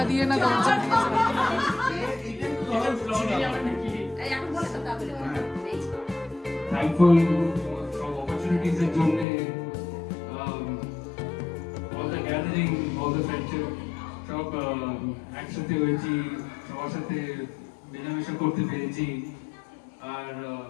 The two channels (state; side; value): drops out; right; at 9.2 s